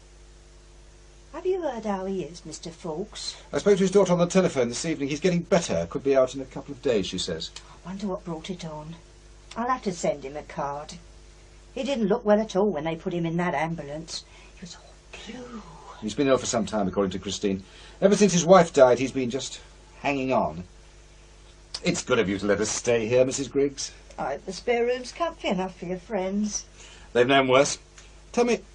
Have you heard how he is, Mr. Fawkes? I spoke to his daughter on the telephone this evening. He's getting better. Could be out in a couple of days, she says. I wonder what brought it on. I'll have to send him a card. He didn't look well at all when they put him in that ambulance. He was all blue. He's been ill for some time, according to Christine. Ever since his wife died, he's been just hanging on. It's good of you to let us stay here, Mrs. Griggs. I hope the spare room's comfy enough for your friends. They've known worse. Tell me,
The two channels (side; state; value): both; identical; correlation 1.00